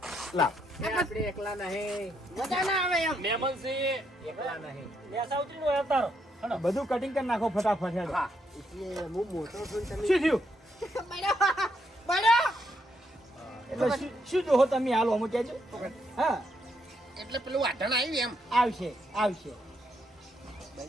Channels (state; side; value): normal; both; correlation 0.76